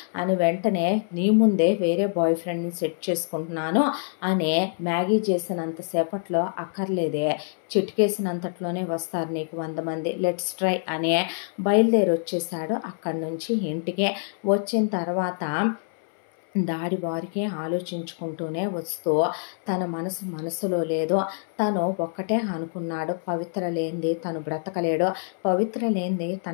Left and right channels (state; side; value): silent; right; 61 dB below the other